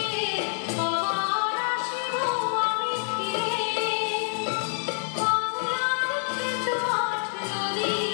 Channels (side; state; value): right; silent; digital silence